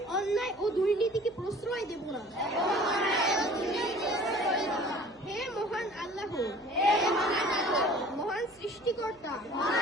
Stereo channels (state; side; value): noise; right; hum, 30 dB below the sound